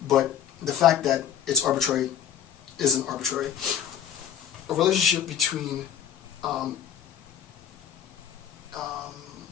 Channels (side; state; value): right; quieter; 8.9 dB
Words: but the fact that it's arbitrary isn't arbitrary. A relationship between